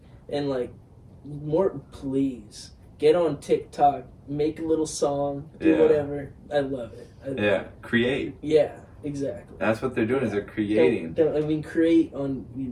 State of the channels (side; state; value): both; identical; correlation 1.00